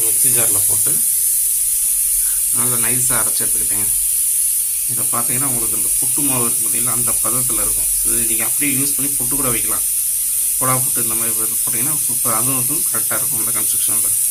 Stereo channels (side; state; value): both; identical; correlation 1.00